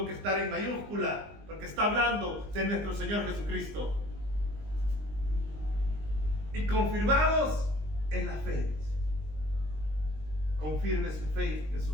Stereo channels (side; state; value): left; late; 20 ms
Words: que estar en mayúscula, porque está hablando de nuestro Señor Jesucristo. Y confirmados en la fe. Confirme su fe en